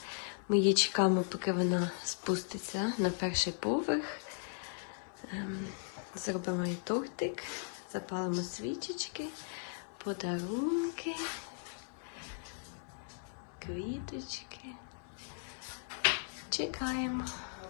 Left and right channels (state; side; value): silent; right; 53 dB below the other